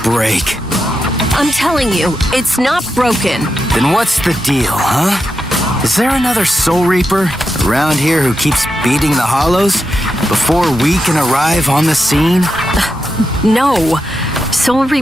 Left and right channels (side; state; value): both; normal; correlation 0.87